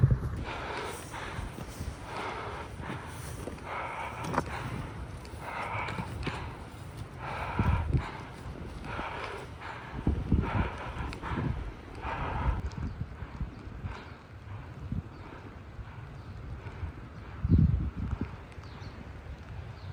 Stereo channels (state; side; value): identical; both; correlation 1.00